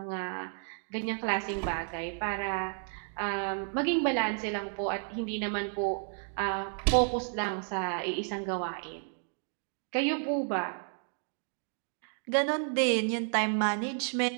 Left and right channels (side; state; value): left; silent; 56 dB below the other